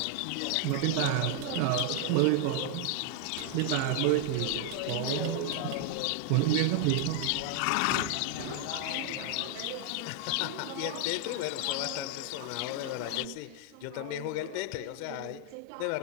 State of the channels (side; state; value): both; different; correlation 0.00